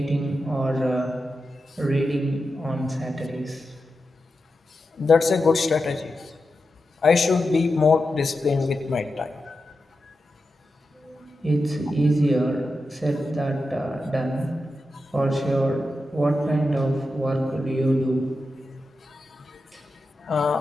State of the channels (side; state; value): both; normal; correlation 0.90